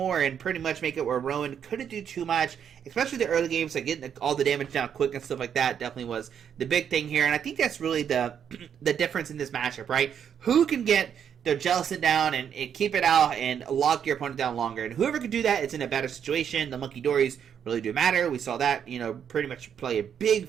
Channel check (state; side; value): quieter; left; 8.3 dB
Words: and pretty much make it where Rowan couldn't do too much, especially the early games, like getting all the damage down quick and stuff like that definitely was the big thing here. And I think that's really the difference in this matchup, right? Who can get their Jellicent down and keep it out and lock your opponent down longer. And whoever can do that, it's in a better situation. The Monkey Dories really do matter. We saw that, pretty much play a